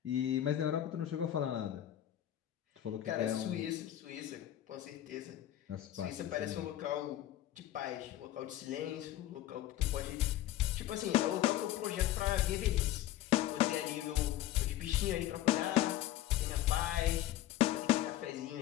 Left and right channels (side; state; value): right; quieter; 13.2 dB